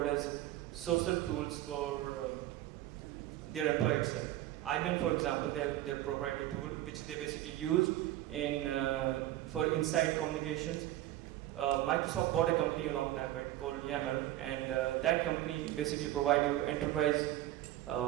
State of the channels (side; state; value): left; quieter; 14.6 dB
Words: as social tools for their employee itself. IBM, for example, they have their proprietary tool, which they basically use in for inside communications. Microsoft bought a company a long time back called Yammer, and that company basically provide you enterprise